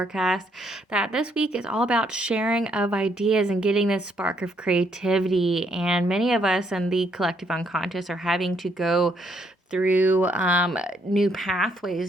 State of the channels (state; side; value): normal; both; correlation 0.72